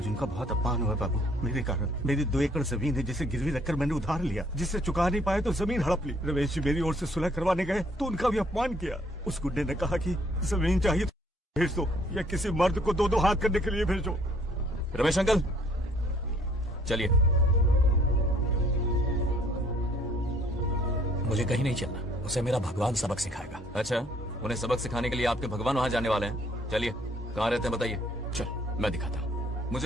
उनका बहुत अपमान हुआ बाबू, मेरे कारण। मेरी 2 एकड़ जमीन है जिसे गिरवी रखकर मैंने उधार लिया, जिसे चुका नहीं पाए तो जमीन हड़प ली। रमेश जी मेरी ओर से सुलह करवाने गए तो उनका भी अपमान किया। उस गुंडे ने कहा कि जमीन चाहिए तो भेज दो, या किसी मर्द को 2-2 हाथ करने के लिए भेजो। रमेश अंकल चलिए। मुझे कहीं नहीं चलना, उसे मेरा भगवान सबक सिखाएगा। अच्छा, उन्हें सबक सिखाने के लिए आपके भगवान वहाँ जाने वाले हैं। चलिए, कहाँ रहते हैं बताइए। चल मैं दिखाता हूँ।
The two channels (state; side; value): normal; both; correlation 0.62